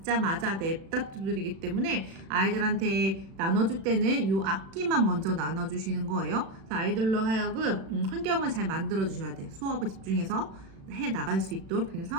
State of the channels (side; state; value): left; late; 36 ms